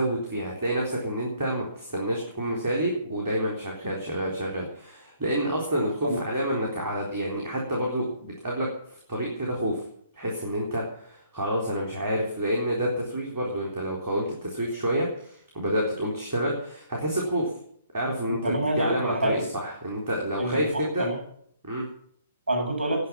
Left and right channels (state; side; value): inverted; both; correlation -0.66